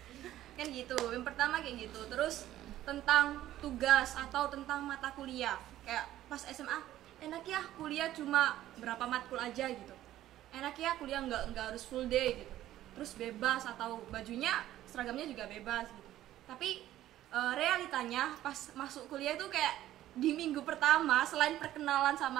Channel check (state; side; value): quieter; left; 13.6 dB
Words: Kan gitu, yang pertama kayak gitu. Terus tentang tugas atau tentang mata kuliah, kayak pas SMA enak ya kuliah cuma berapa matkul aja gitu, enak ya kuliah nggak harus full day gitu, terus bebas atau bajunya seragamnya juga bebas gitu. Tapi realitanya pas masuk kuliah itu kayak di minggu pertama selain perkenalan